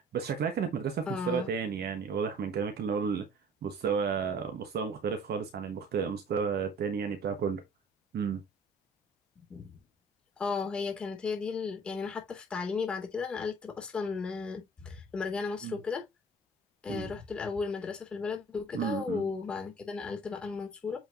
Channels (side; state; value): both; normal; correlation 0.51